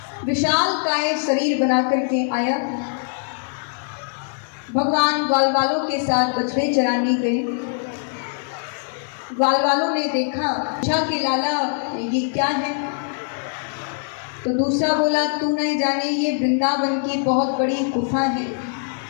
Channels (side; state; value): right; silent; 62 dB below the other